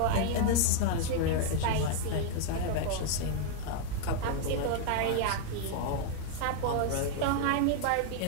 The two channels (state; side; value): different; both; correlation 0.00